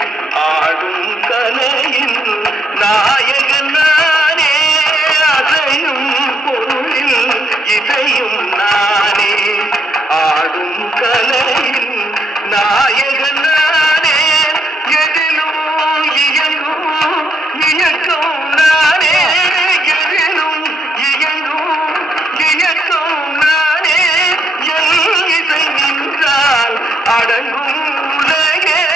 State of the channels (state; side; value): normal; both; correlation 0.74